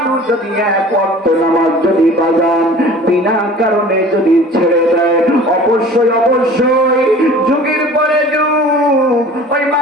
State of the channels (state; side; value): normal; both; correlation 0.44